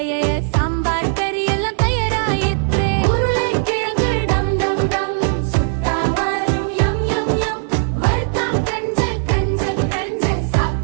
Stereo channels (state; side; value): silent; left; 64 dB below the other